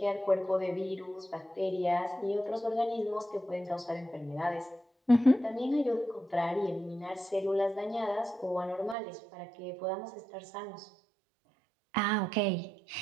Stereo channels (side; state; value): left; drops out; at 9.0 s